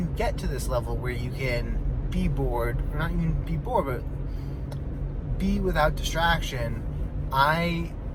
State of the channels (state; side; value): identical; both; correlation 1.00